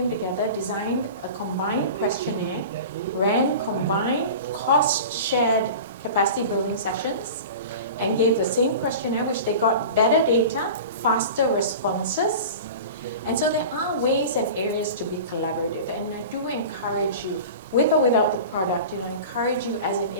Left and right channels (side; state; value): both; inverted; correlation -0.34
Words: together, designed a combined questionnaire, ran combined cost-shared capacity building sessions, and gave the same questionnaire, which they got better data, faster responses. And so there are ways and areas to be collaborative, and I do encourage you, with or without the product, encourage you as an